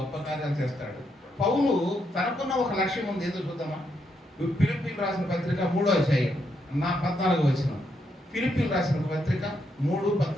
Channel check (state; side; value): normal; both; correlation 0.79